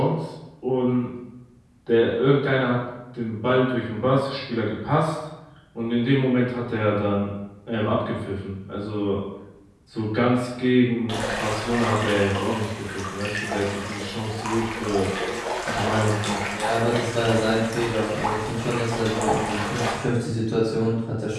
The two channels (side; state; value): both; identical; correlation 1.00